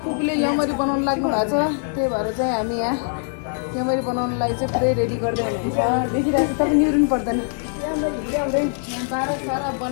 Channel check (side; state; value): right; silent; digital silence